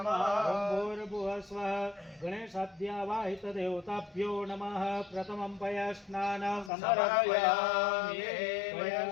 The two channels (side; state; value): right; drops out; at 6.7 s